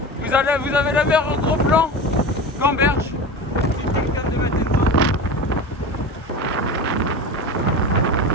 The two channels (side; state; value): both; normal; correlation 0.28